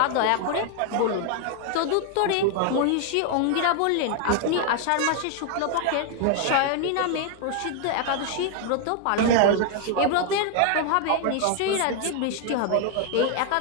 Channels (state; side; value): different; both; correlation 0.00